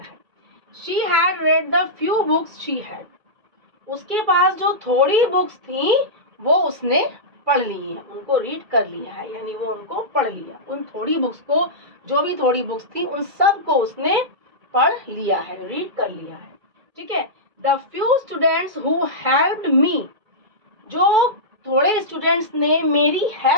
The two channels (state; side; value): late; left; 2.3 ms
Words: है। She had read the few books she had, उसके पास जो थोड़ी बुक्स थी वो उसने पढ़ ली है, उनको रीड कर लिया है, यानी वो उनको पढ़ लिया, उन थोड़ी बुक्स को, जो भी थोड़ी बुक्स थी उन सब को उसने पढ़ लिया है, रीड कर लिया है। ठीक है, the few students who helped me, जो थोड़े स्टूडेंट्स ने मेरी